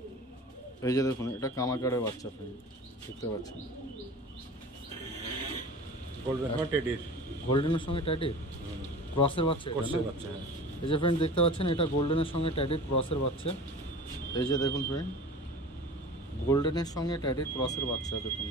এই যে দেখুন এটা কামাগারের বাচ্চা ফ্রেন্ড দেখতে পাচ্ছেন। গোল্ডেন টেডির গোল্ডেনের সঙ্গে ট্যাডির ক্রসের বাচ্চা এটা কোর্সের না? বাচ্চা। হ্যাঁ, এই যে ফ্রেন্ড দেখতে পাচ্ছেন এটা গোল্ডেনের সঙ্গে ট্যাডির ক্রসের বাচ্চা। এই যে দেখুন ফ্রেন্ড, গোল্ডেনের সঙ্গে ট্যাডির ক্রসের বাচ্চা দেখুন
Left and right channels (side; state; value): both; normal; correlation 0.38